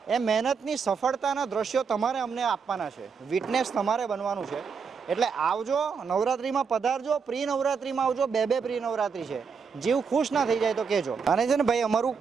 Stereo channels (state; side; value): quieter; left; 5.9 dB